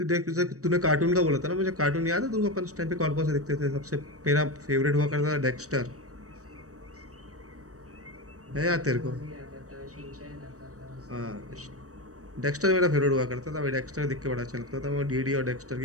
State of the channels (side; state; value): left; late; 0.66 ms